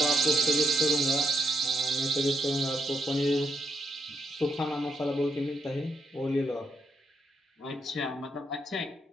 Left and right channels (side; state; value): both; normal; correlation 0.77